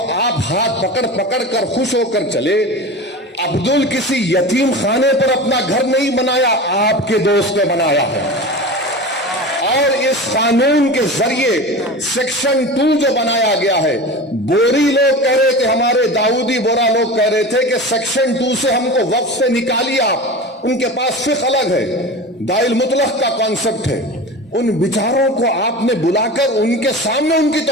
آپ ہاتھ پکڑ پکڑ کر خوش ہو کر چلے. عبدل کسی یتیم خانے پر اپنا گھر نہیں بنایا, آپ کے دوست نے بنایا ہے. اور اس قانون کے ذریعے سیکشن 2 جو بنایا گیا ہے, بوری لوگ کہہ رہے تھے, ہمارے داؤدی بورا لوگ کہہ رہے تھے کہ سیکشن 2 سے ہم کو وقف سے نکالیے آپ. ان کے پاس فقہ الگ ہے, دائل مطلق کا کانسیپٹ ہے. ان بیچاروں کو آپ نے بلا کر ان کے سامنے ان کی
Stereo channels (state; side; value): normal; both; correlation 0.31